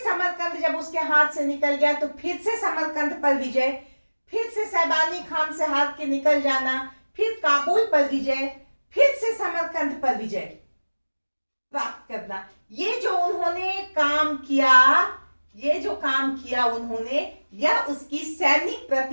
समरकंद जब उसके हाथ से निकल गया तो फिर से समरकंद पर विजय, फिर से शैबानी खान से हार के निकल जाना, फिर काबुल पर विजय, फिर से समरकंद पर विजय प्राप्त करना। ये जो उन्होंने काम किया उन्होंने, यह उसकी सैनिक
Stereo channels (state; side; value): inverted; both; correlation -1.00